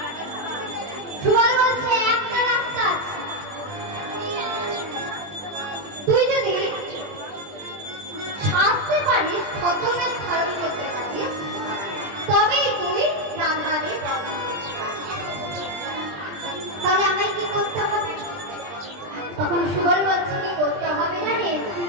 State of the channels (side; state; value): left; late; 20 ms